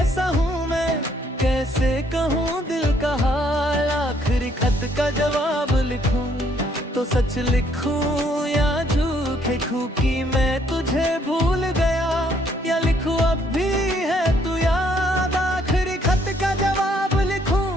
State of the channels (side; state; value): both; normal; correlation 0.67